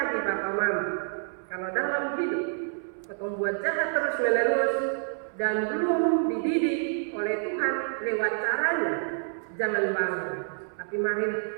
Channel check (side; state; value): left; silent; 59 dB below the other